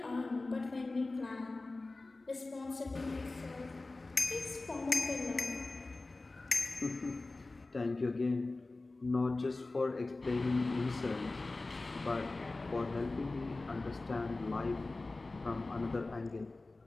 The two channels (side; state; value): right; quieter; 3.2 dB